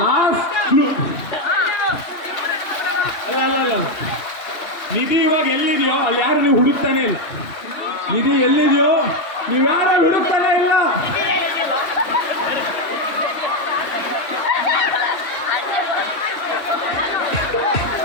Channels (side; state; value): right; late; 3.1 ms